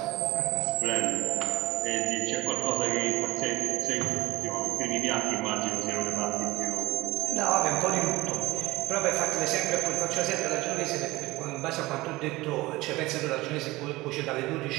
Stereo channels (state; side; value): quieter; left; 20.0 dB